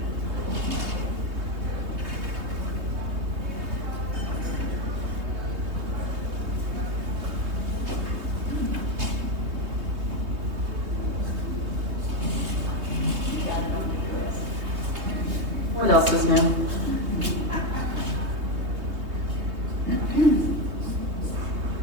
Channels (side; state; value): left; late; 3.2 ms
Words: What else is new?